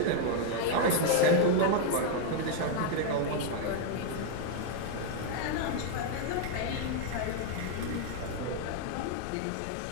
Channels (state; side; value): different; both; correlation 0.00